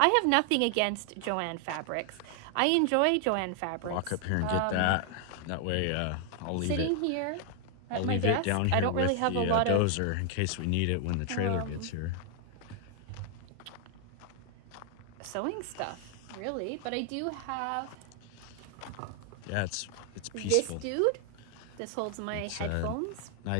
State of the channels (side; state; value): both; different; correlation 0.00